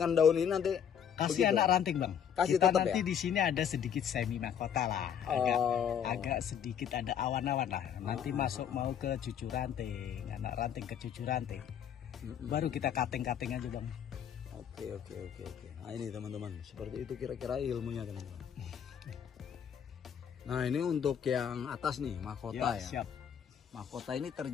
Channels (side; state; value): right; quieter; 8.5 dB